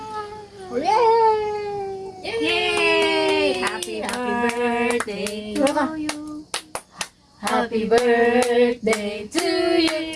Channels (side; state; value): both; identical; correlation 1.00